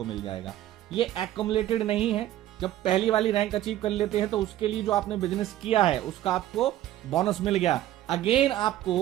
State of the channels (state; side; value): quieter; left; 13.4 dB